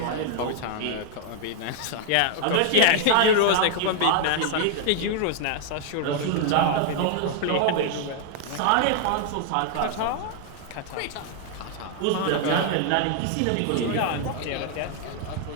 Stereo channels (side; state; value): both; different; correlation 0.00